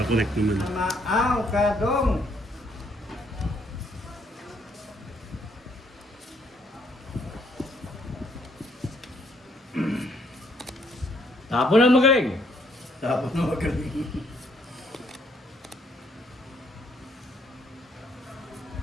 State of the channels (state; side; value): normal; both; correlation 0.69